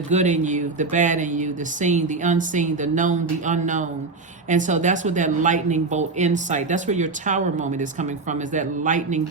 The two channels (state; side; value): quieter; left; 3.8 dB